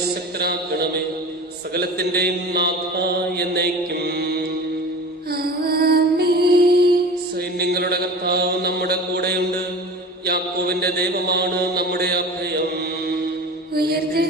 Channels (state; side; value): normal; both; correlation 0.35